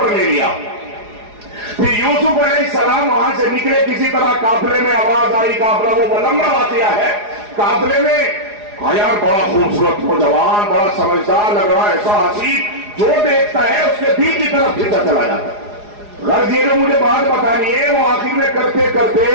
لے لیا۔ پھر یوسف علیہ السلام وہاں سے نکلے، کسی طرح قافلے میں آواز آئی، قافلہ وہ لمبا واقعہ ہے، قافلے میں یار بڑا خوبصورت نوجوان، بڑا سمجھدار لگ رہا ہے، ایسا حسین، جو دیکھتا ہے اس کے دل کی طرف کھینچا چلا جاتا ہے۔ غرض یہ مجھے بات بتانی ہے، وہ آخر میں کرتے کرتے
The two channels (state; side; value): late; left; 4.8 ms